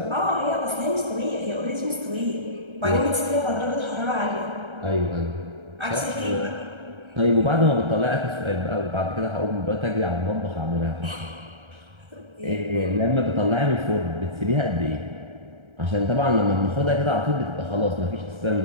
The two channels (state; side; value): late; left; 1.3 ms